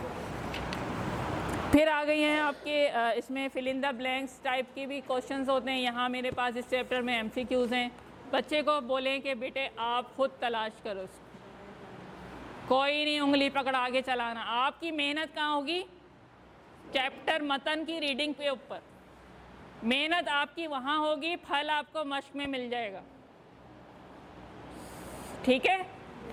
फिर आ गई हैं आपके इसमें fill in the blanks type के भी क्वेश्चंस होते हैं। यहाँ मेरे पास इस चैप्टर में MCQs हैं। बच्चे को बोलें कि बेटे आप खुद तलाश करो उसको, कोई नहीं उंगली पकड़ा के चलाना। आपकी मेहनत कहाँ होगी, चैप्टर मतन की रीडिंग पे ऊपर मेहनत आपकी वहाँ होगी, फल आपको मश्क में मिल जाएगा, ठीक है।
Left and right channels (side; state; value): both; identical; correlation 1.00